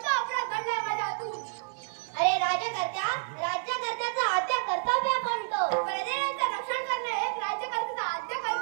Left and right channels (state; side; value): silent; left; digital silence